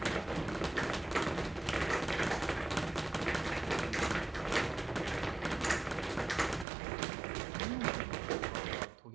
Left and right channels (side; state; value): left; drops out; at 6.7 s